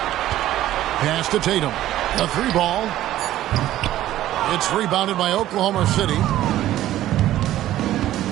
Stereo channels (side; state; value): left; quieter; 13.7 dB